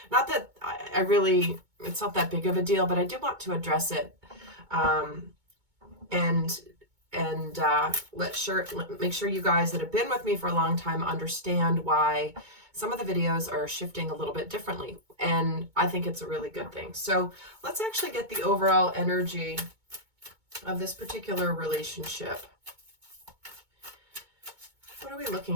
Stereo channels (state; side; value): late; left; 2.2 ms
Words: not that I really, it's not that big of a deal, but I do want to address it. Make sure you guys that have been with me for a long time understand why some of the videos are shifting a little bit differently. And I think it's a really good thing. So let's actually get the overall energy of this particular relationship. What are we